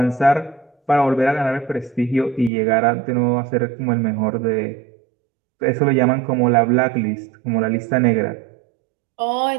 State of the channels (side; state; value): left; drops out; at 2.5 s